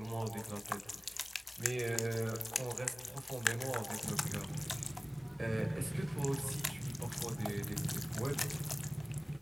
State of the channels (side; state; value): both; normal; correlation 0.98